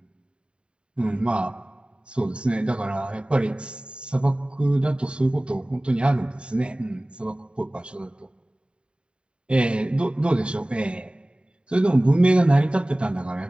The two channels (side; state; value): left; late; 0.052 ms